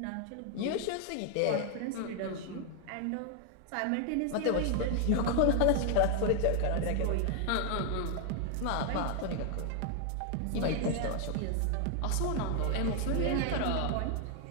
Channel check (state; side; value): different; both; correlation 0.00